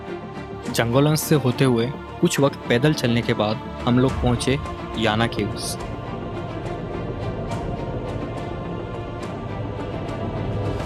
जंगलों से होते हुए कुछ वक्त पैदल चलने के बाद हम लोग पहुंचे याना केव्स।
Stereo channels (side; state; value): both; identical; correlation 1.00